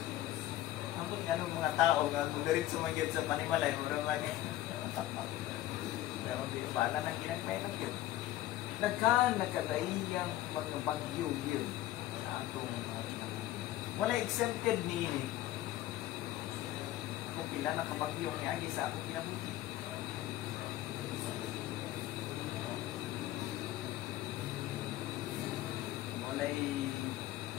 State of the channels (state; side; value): quieter; right; 14.5 dB